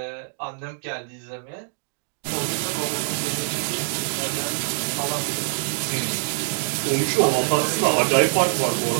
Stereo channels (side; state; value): left; silent; digital silence